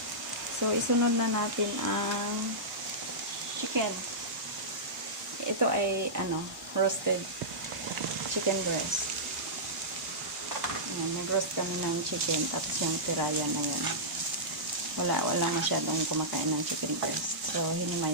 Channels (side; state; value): both; normal; correlation -0.15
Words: So isunod na natin ang chicken. Ito ay roasted chicken breast. Nag-roast kami ng chicken tapos yung tiraya na yun. Wala masyadong kumakain ng chicken breast. So